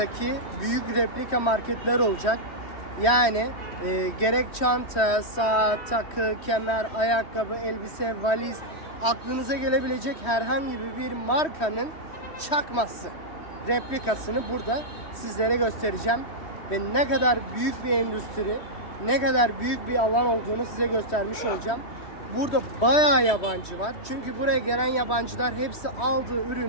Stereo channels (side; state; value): right; late; 3.1 ms